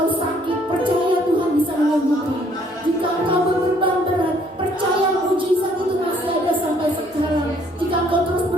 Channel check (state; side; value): normal; both; correlation 0.63